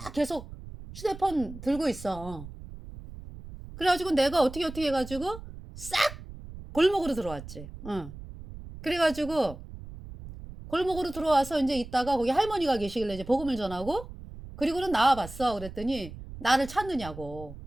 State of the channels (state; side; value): noise; right; rumble, 13 dB below the sound